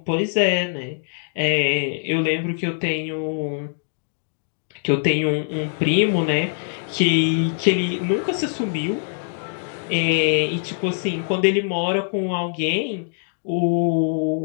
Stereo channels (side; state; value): right; silent; digital silence